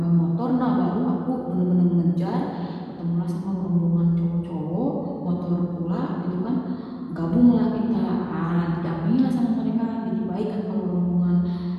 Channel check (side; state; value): both; identical; correlation 1.00